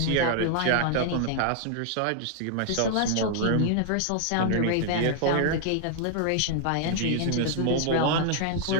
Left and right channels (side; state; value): both; different; correlation 0.00